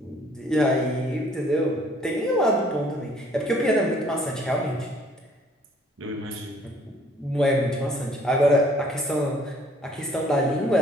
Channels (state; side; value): normal; both; correlation 0.59